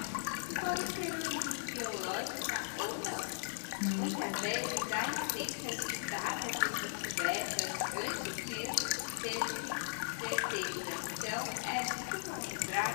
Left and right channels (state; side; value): silent; right; digital silence